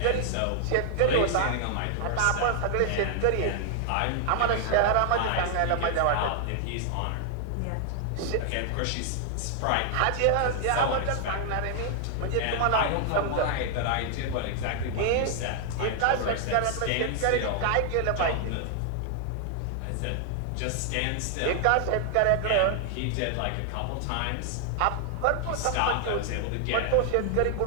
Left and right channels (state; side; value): different; both; correlation 0.00